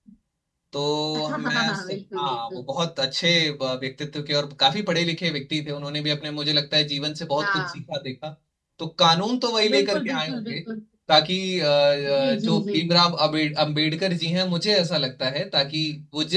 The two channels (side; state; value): both; identical; correlation 1.00